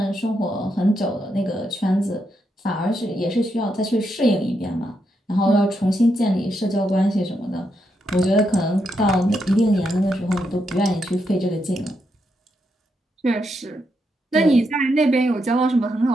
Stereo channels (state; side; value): normal; both; correlation 0.81